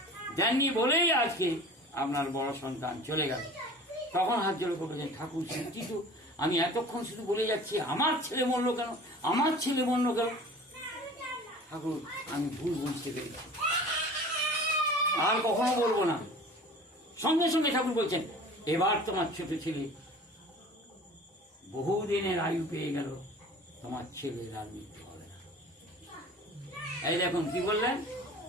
দেননি বলেই আজকে আপনার বড় সন্তান চলে গেল। তখন হাত জোড় করে বলছেন, ঠাকুর সত্যি তো, আমি এতক্ষণ শুধু বলে যাচ্ছি আমার ছেলে মরলো কেন, আমার ছেলে মরলো কেন। ঠাকুর, আমি ভুল বুঝতে পেরেছি, আর কখনো বলবো না। সঙ্গে সঙ্গে ঠাকুর বলছেন, এবার তোমার ছোট ছেলে বহুদিনের আয়ু পেয়ে গেল, তোমার ছেলের আর মৃত্যু হবে না। এই দেখুন কি বললেন,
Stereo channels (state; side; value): normal; both; correlation 0.42